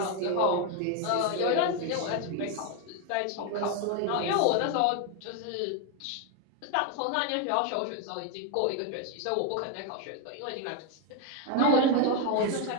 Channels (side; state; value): both; different; correlation 0.02